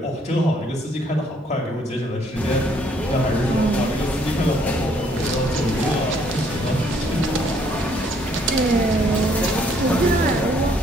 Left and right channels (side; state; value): both; normal; correlation 0.66